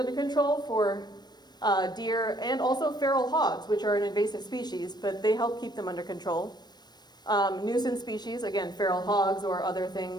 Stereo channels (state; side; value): late; right; 0.20 ms